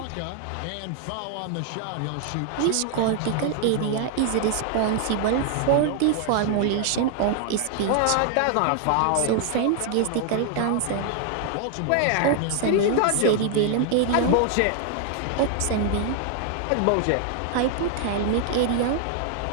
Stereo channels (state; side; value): different; both; correlation 0.00